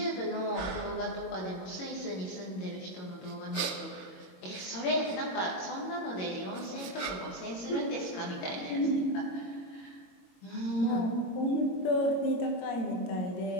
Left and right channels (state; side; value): late; right; 22 ms